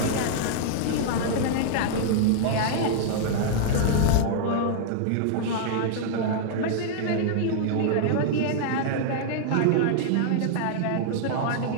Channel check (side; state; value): both; different; correlation -0.01